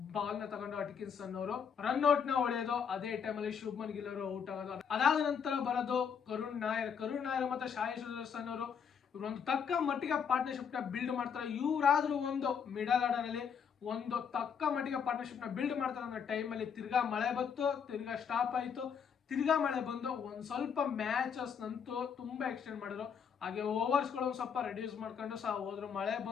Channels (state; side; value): quieter; right; 7.1 dB